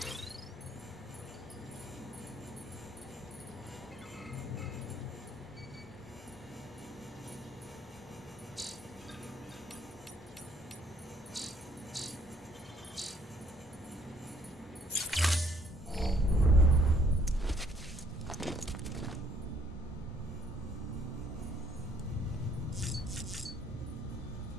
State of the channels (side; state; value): both; normal; correlation 0.65